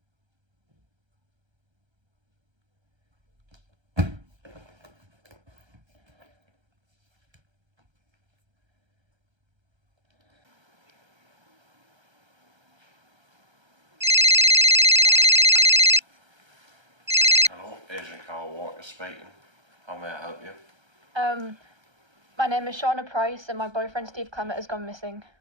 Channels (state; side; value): late; left; 1.3 ms